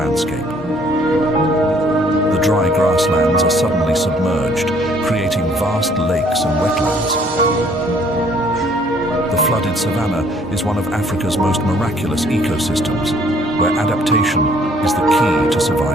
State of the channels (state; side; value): normal; both; correlation 0.61